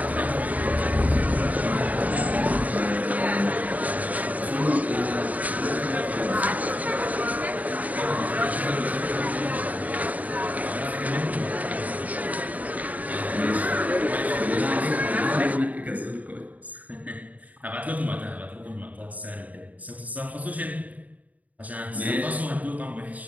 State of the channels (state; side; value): late; left; 0.074 ms